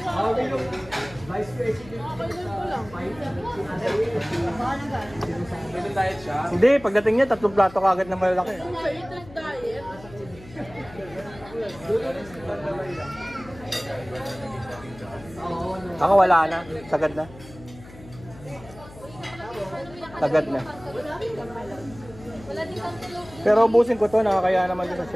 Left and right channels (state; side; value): noise; left; hum, 19 dB below the sound